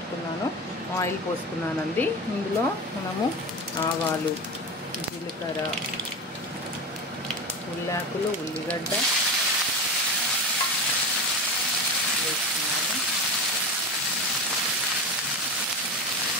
ఆయిల్ పోసుకున్నానండి. ఇందులో మనము ఆవాలు, జీలకర్ర, ఉల్లాకులు, ఉల్లిగడ్డ వేసుకున్నాను.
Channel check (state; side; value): normal; both; correlation 0.24